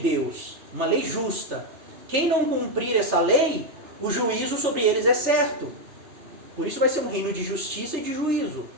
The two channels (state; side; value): late; left; 3.3 ms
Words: uma lei justa. Quem não cumprir essa lei, o juízo sobre eles é certo. Por isso vai ser um reino de justiça e de juízo.